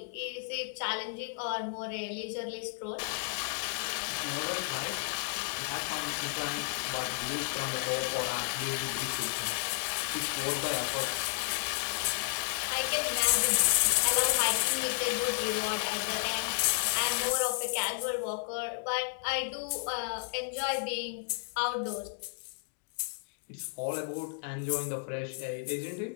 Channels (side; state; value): right; silent; digital silence